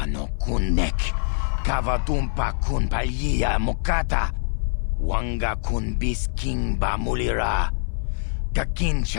no kunek. Kavatumpa kun palia mokata. Wanga kun bis kimba mulira.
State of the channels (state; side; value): silent; right; 61 dB below the other